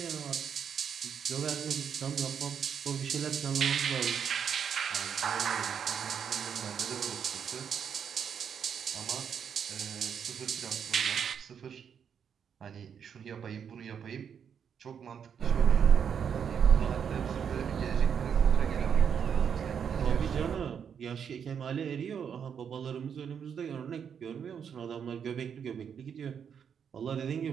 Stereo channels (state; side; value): quieter; left; 7.6 dB